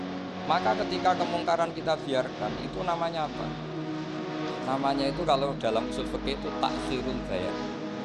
Maka ketika kemungkaran kita biarkan, itu namanya apa? Namanya itu kalau dalam usul fikih itu takhirul bayan.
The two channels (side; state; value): both; identical; correlation 1.00